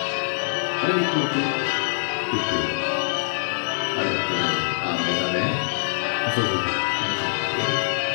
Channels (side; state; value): right; silent; digital silence